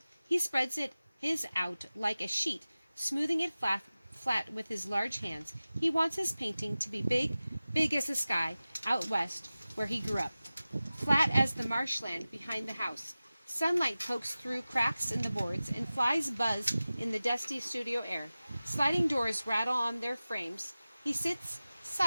He spreads his out like a sheet, smoothing it flat with his large hands. He wants his painting to be big as the sky out west where he grew up, flat as the marshland behind the house. Sunlight pokes through cracks in the boards, and flies buzz in the dusty studio air. Sliding doors rattle on their frames. He sits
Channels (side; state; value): both; inverted; correlation -0.96